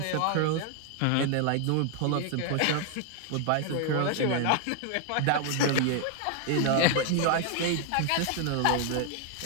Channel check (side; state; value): both; different; correlation 0.00